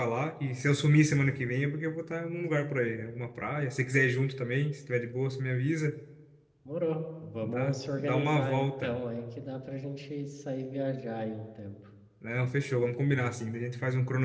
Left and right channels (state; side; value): identical; both; correlation 1.00